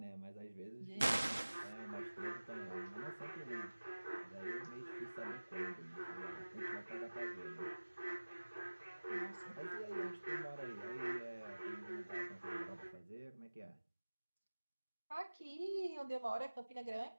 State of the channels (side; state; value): both; inverted; correlation -1.00